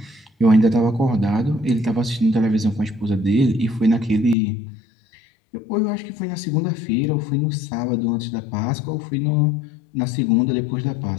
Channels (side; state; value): right; drops out; at 4.4 s